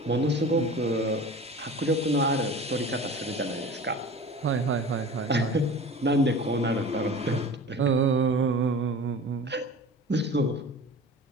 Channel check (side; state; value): both; normal; correlation 0.38